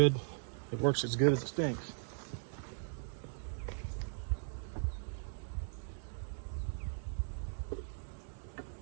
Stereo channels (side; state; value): left; silent; 52 dB below the other